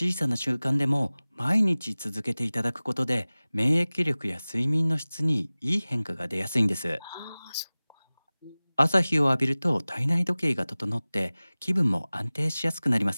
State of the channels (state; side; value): inverted; both; correlation -0.99